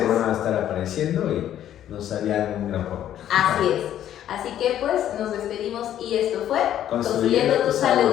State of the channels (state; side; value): quieter; right; 11.2 dB